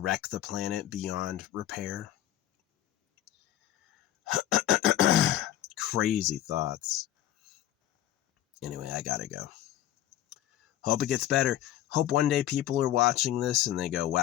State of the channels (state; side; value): quieter; right; 13.1 dB